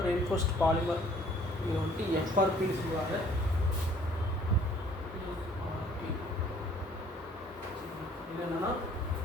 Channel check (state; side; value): normal; both; correlation 0.57